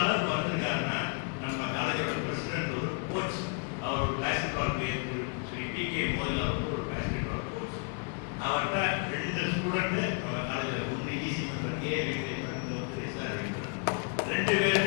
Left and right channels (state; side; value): quieter; right; 36.7 dB